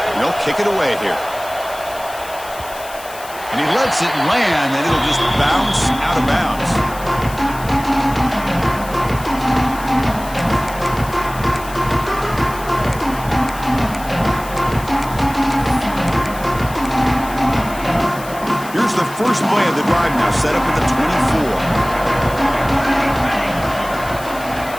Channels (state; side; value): noise; left; hiss, 16 dB below the sound